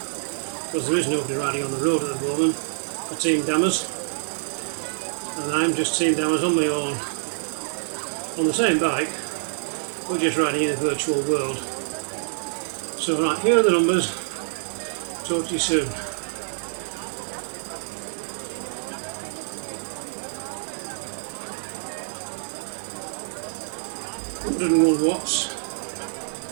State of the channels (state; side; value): silent; left; 61 dB below the other